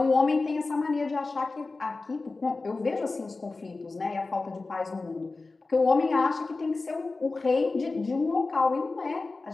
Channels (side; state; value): right; quieter; 3.6 dB